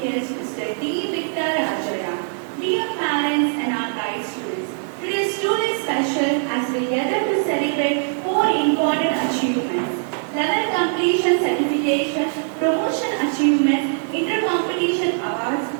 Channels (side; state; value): left; silent; 58 dB below the other